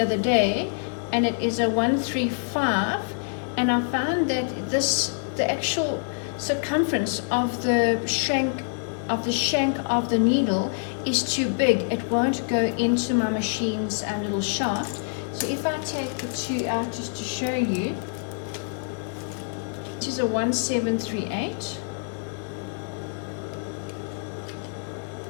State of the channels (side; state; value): right; silent; digital silence